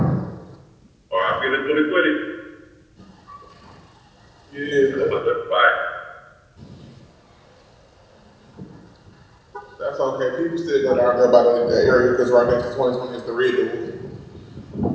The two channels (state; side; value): identical; both; correlation 1.00